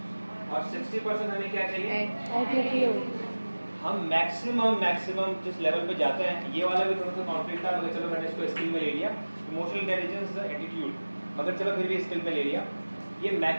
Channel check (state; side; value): inverted; both; correlation -1.00